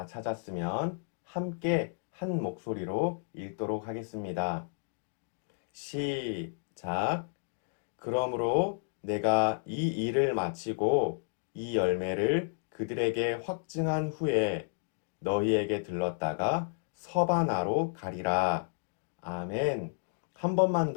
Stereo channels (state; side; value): silent; right; digital silence